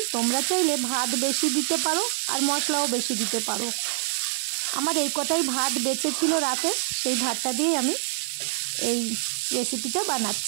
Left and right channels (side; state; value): left; silent; digital silence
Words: তোমরা চাইলে ভাত বেশি দিতে পারো আর মশলাও বেশি দিতে পারো। আমার এই কটাই ভাত বেঁচে ছিল রাতে, সেই ভাতটা দিয়েই আমি এই রেসিপিটা